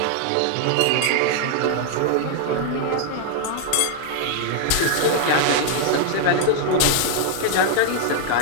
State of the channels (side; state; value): both; different; correlation 0.00